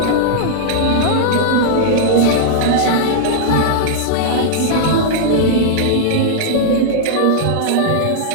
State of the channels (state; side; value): different; both; correlation -0.02